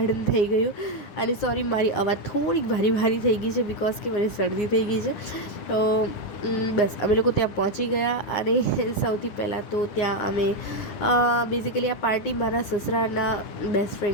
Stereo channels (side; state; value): right; late; 10 ms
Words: થઈ ગયું. અને સોરી, મારી અવાજ થોડીક ભારી થઈ ગઈ છે બિકોઝ કે મને શરદી થઈ ગઈ છે. તો બસ અમે લોકો ત્યાં પહોંચી ગયા અને સૌથી પહેલાં તો ત્યાં અમે બેઝિકલી આ પાર્ટી મારા સસરાના બેસ્ટ